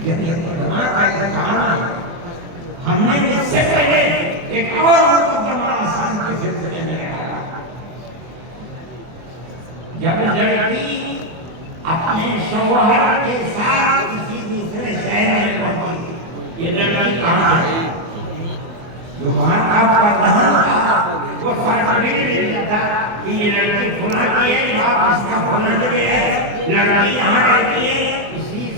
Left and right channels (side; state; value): left; late; 24 ms